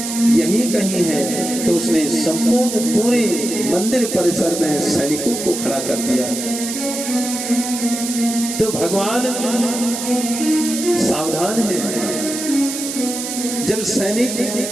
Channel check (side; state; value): right; noise; hiss, 5 dB below the sound